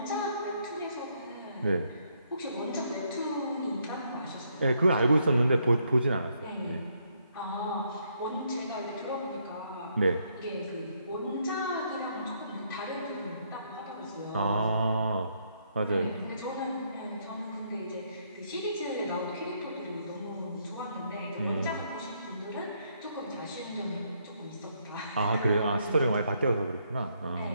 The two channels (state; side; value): inverted; both; correlation -0.73